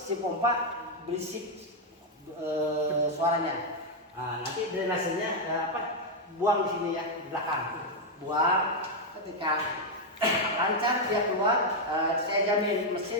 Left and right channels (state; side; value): normal; both; correlation 0.01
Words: si pompa berisik suaranya. Nah, nanti drainasenya buang di sini ya, di belakang. Buang, ketika lancar dia keluar, saya jamin